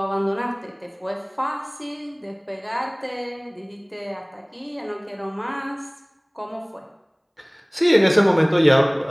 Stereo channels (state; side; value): identical; both; correlation 1.00